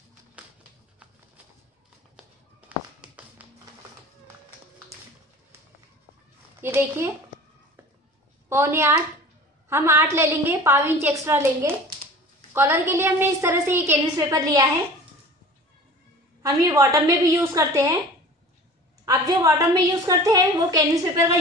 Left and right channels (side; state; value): both; normal; correlation 0.41